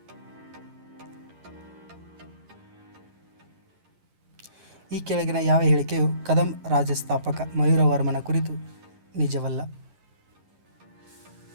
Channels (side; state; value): left; late; 11 ms